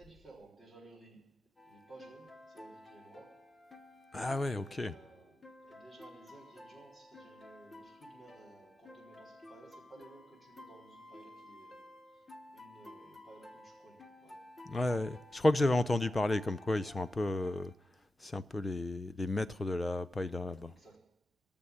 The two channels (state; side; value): normal; both; correlation 0.92